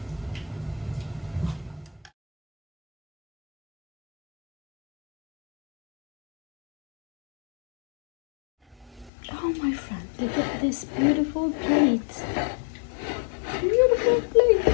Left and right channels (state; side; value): drops out; right; at 9.1 s